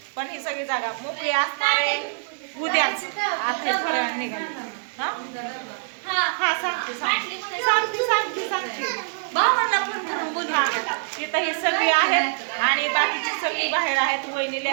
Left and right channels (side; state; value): left; silent; digital silence